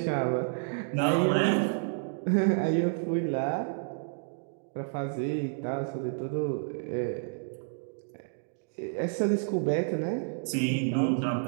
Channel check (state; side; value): silent; left; digital silence